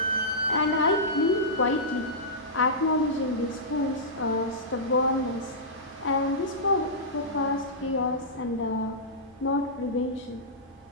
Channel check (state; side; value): normal; both; correlation -0.15